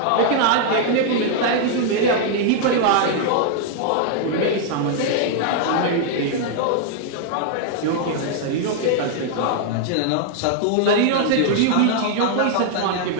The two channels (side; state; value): both; different; correlation 0.00